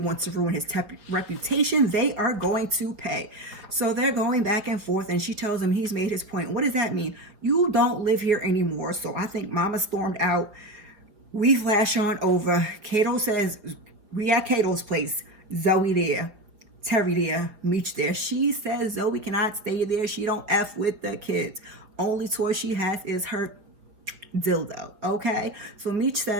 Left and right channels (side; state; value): left; late; 5.0 ms